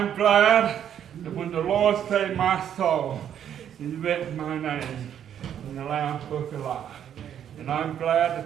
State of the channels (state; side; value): quieter; left; 9.5 dB